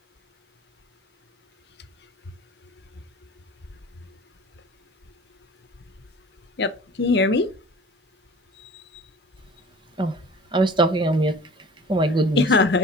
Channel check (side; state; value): both; normal; correlation 0.44